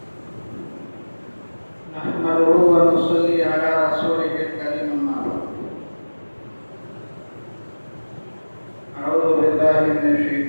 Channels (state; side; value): inverted; both; correlation -1.00